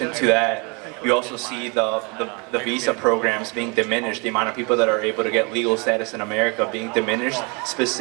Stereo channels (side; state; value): left; quieter; 31.4 dB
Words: to that, you also see the visa programs being diminished, the amount of people that are able to get legal status in America being diminished,